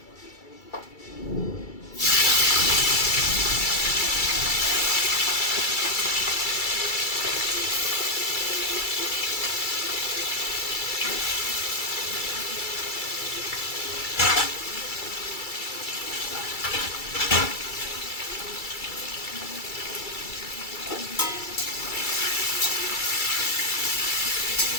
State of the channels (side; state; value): right; late; 2.3 ms